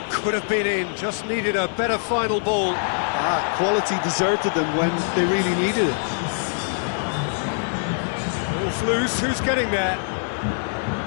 could have been in, just needed a better final ball. Quality deserted them when they really needed it. Ball's loose, who's getting there?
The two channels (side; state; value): right; silent; digital silence